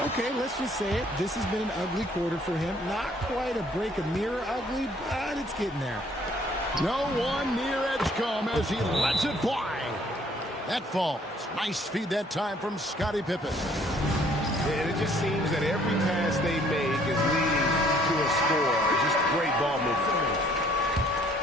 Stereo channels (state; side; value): normal; both; correlation 0.61